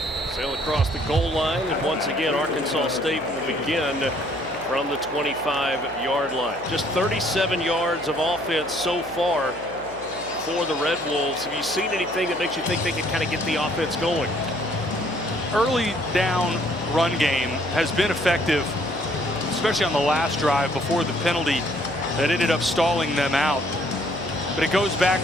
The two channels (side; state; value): left; noise; hum, 18 dB below the sound